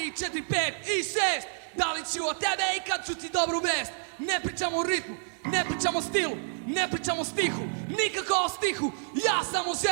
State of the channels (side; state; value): left; silent; 59 dB below the other